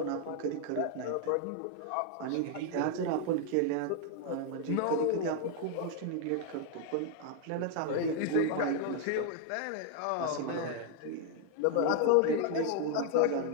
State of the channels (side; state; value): both; different; correlation 0.00